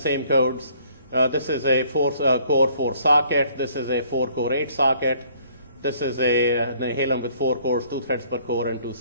codes. This is a 4-core 4-socket. This is a 4-core 8-socket. This is a Halem with 4 cores, 2 threads per core, and 2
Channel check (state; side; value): inverted; both; correlation -0.61